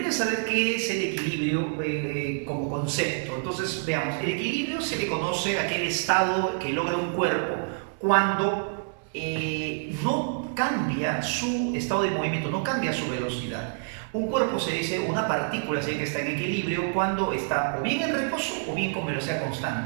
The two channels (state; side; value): silent; left; digital silence